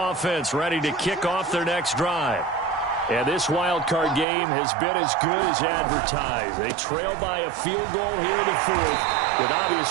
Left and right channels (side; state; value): left; drops out; at 4.2 s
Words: ready to kick off their next drive. And this wild card game has been as good as advertised. They trail by a field goal here in the fourth, with